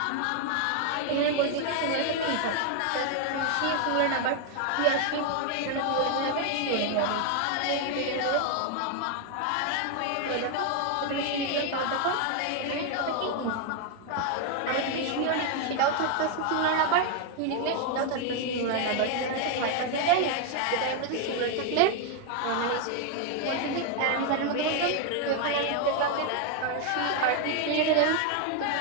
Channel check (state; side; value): different; both; correlation 0.01